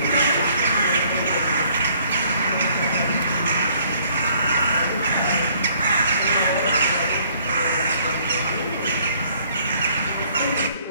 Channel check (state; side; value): inverted; both; correlation -0.62